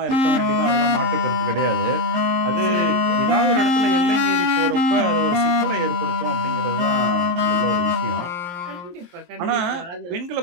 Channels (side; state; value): left; late; 23 ms